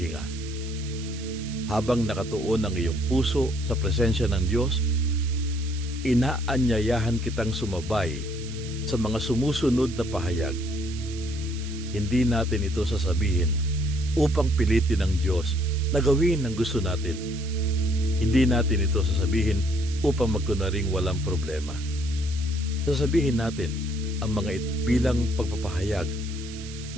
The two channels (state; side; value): noise; right; hiss, 15 dB below the sound